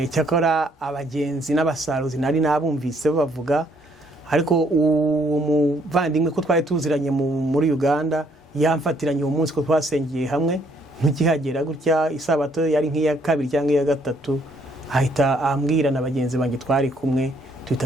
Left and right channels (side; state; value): both; normal; correlation 0.67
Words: cyakora abagenzi n'abasaruzi nari nabumvise bavuga, ariko umuvandimwe ko twari tuziranye muri Uganda yamfatiranye uwo munsi ko twasengeye hamwe nk'ikihagera gutya isabato yari nk'iya kabiri cyangwa iya gatatu, ahita ambwira na bagenzi banjye twari kumwe